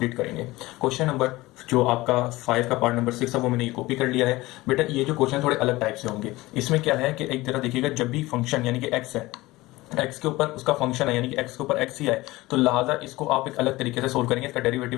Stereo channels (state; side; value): quieter; right; 19.6 dB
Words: करेंगे। क्वेश्चन नंबर जो आपका 5 का पार्ट नंबर 6 है वो मैंने ये कॉपी कर लिया है। बेटा, ये जो क्वेश्चन थोड़े अलग टाइप से होंगे। इसमें क्या है कि एक तरह देखिएगा, जब भी फंक्शन यानी कि एक्स है, एक्स के ऊपर उसका फंक्शन है यानी कि एक्स के ऊपर एक्स ही आए, तो लिहाजा इसको आप एक अलग तरीके से सोल्व करेंगे। इसका डेरिवेटिव